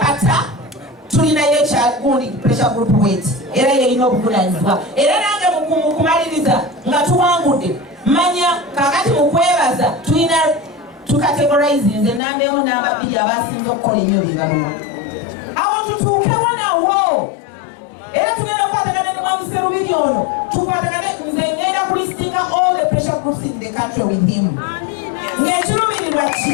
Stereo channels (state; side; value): drops out; right; at 12.2 s